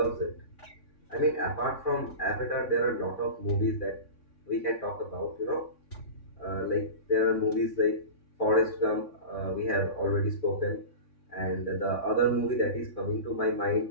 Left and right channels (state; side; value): late; right; 3.5 ms